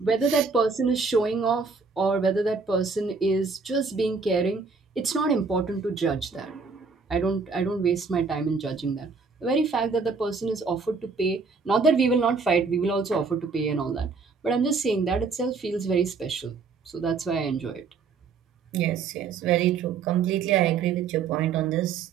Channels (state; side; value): quieter; left; 4.8 dB